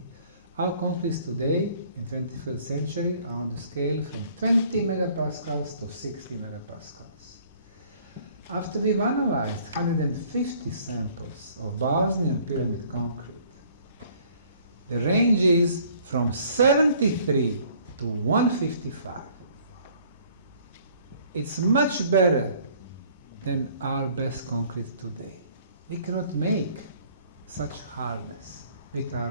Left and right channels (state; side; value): inverted; both; correlation -0.57